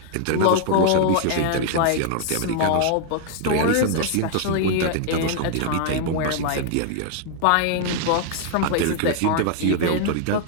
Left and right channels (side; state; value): both; different; correlation 0.00